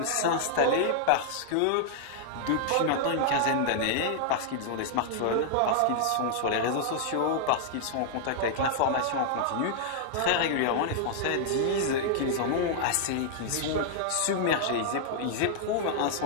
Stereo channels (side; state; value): both; different; correlation -0.01